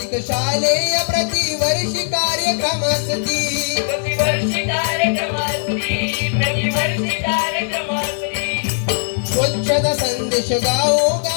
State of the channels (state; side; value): silent; right; 66 dB below the other